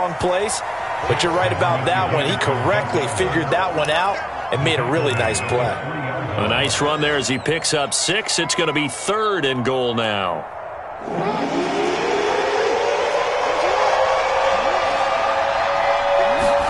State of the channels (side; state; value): both; identical; correlation 1.00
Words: place. But you're right about that one. He correctly figured that one out and made a really nice play. A nice run there as he picks up 6. It's going to be 3rd and goal now.